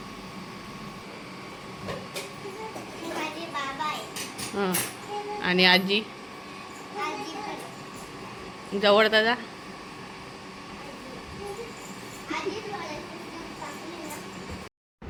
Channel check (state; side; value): identical; both; correlation 1.00